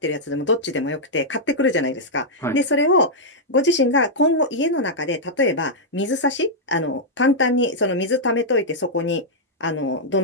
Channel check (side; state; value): both; normal; correlation -0.07